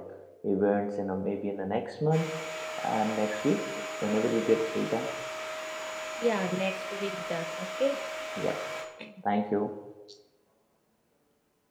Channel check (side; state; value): both; identical; correlation 1.00